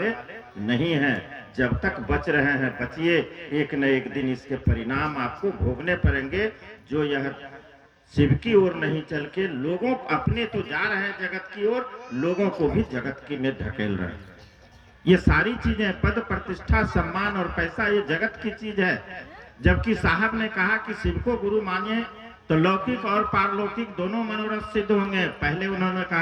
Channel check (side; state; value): both; identical; correlation 1.00